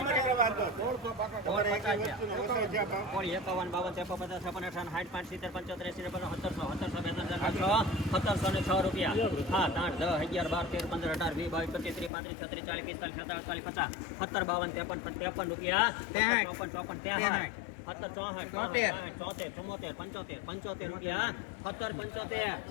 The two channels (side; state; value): right; drops out; at 12.1 s